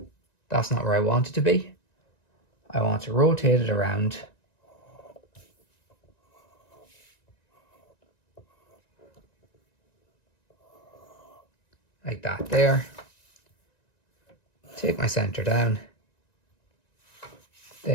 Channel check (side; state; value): right; late; 1.9 ms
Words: That's not where I want it to be. I want to rotate it around. Like that there. Take my center down.